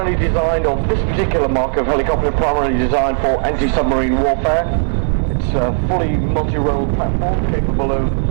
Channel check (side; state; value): left; silent; 58 dB below the other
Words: designed, or this particular mark of helicopter, primarily designed for anti-submarine warfare. It's a fully multi-role platform capable of